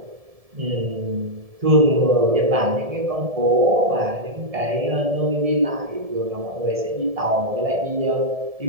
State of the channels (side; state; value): left; late; 1.7 ms